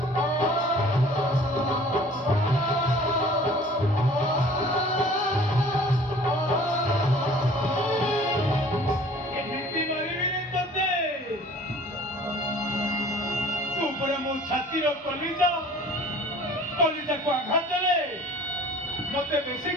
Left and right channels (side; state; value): both; normal; correlation 0.49